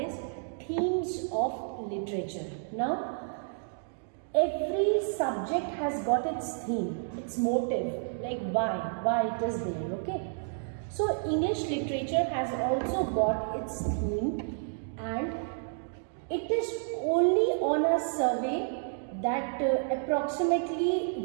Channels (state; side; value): silent; left; digital silence